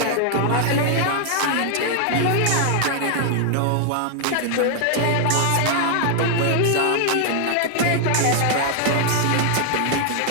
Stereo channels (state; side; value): different; both; correlation 0.00